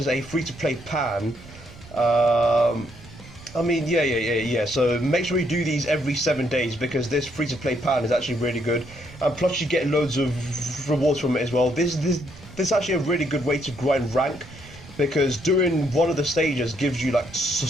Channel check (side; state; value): right; noise; rumble, 20 dB below the sound